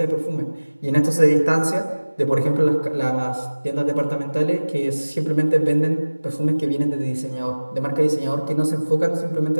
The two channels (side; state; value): both; inverted; correlation -1.00